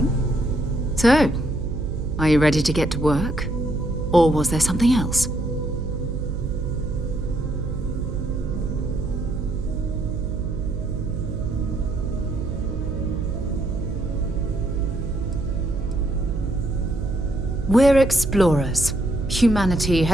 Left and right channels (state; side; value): noise; right; hum, 4 dB below the sound